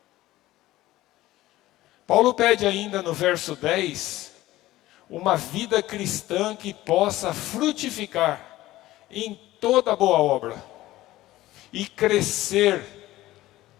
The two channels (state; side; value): quieter; right; 16.3 dB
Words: Paulo pede ainda no verso 10, uma vida cristã que possa frutificar em toda boa obra e crescer